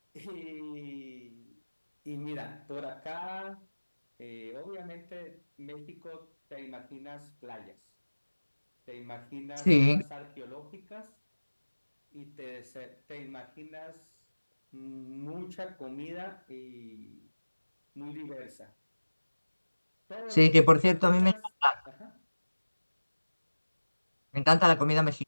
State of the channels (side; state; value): both; inverted; correlation -1.00